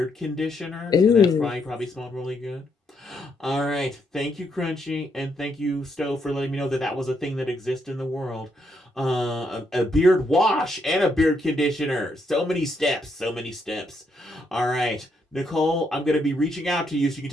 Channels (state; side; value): normal; both; correlation 0.76